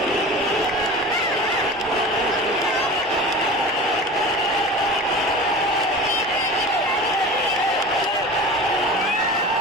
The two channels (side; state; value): both; normal; correlation 0.35